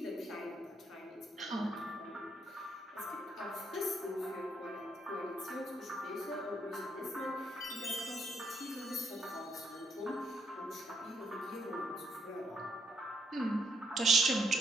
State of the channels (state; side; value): normal; both; correlation 0.74